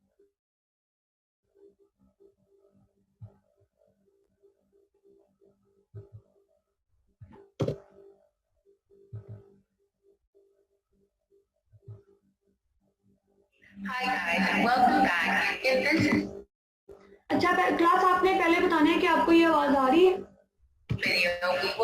Hi guys, and welcome back. In this अच्छा क्लास आपने पहले बताना है कि आपको ये आवाज आ रही है। video, we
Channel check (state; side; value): identical; both; correlation 1.00